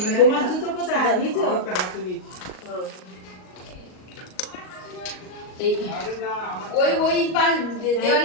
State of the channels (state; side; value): late; right; 38 ms